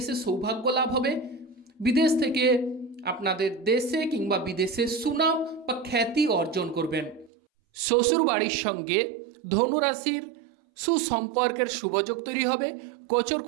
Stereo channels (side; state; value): left; drops out; at 7.3 s